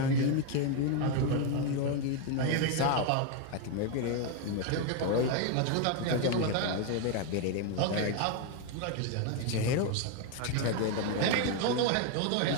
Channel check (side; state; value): both; different; correlation 0.01